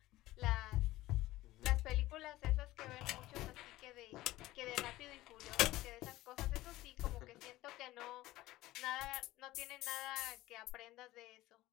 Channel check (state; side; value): quieter; right; 17.0 dB